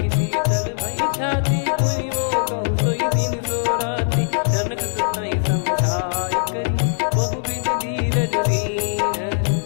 शीतल भई छाती पुनि मो कहु सोई दिन सो राती। जनक सुतहि समझाई करी बहु विधि धीरज दीन।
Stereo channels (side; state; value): right; silent; 65 dB below the other